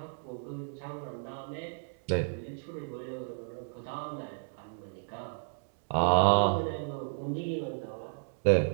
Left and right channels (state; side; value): silent; left; digital silence